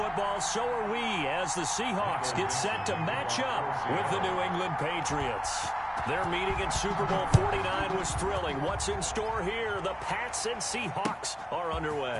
so are we, as the Seahawks get set to match up with the New England Patriots. Their meeting in Super Bowl 49 was thrilling. What's in store here? The Pats and Seahawks are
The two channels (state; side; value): identical; both; correlation 1.00